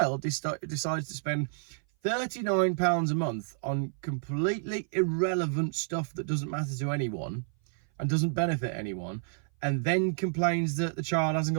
decides to spend £39 a month on completely irrelevant stuff that doesn't matter to anyone and doesn't benefit anyone, and then complains that the child hasn't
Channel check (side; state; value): left; silent; 56 dB below the other